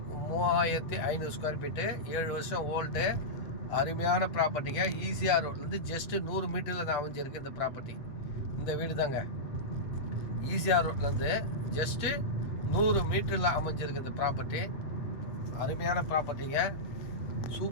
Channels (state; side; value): late; right; 8.0 ms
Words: 3500 ஸ்கொயர் ஃபீட்டு. 7 வருஷம் ஓல்டு. அருமையான ப்ராப்பர்ட்டிங்க. ஈசிஆர் ரோட்லேருந்து ஜஸ்ட்டு 100 மீட்டரில் தான் அமைஞ்சிருக்கு இந்த ப்ராப்பர்ட்டி. இந்த வீடு தாங்க. ஈசிஆர் ரோட்லேருந்து ஜஸ்ட்டு 100 மீட்டரில் அமைஞ்சிருக்கு இந்த ப்ராப்பர்ட்டி. அருமையான ப்ராப்பர்ட்டிங்க,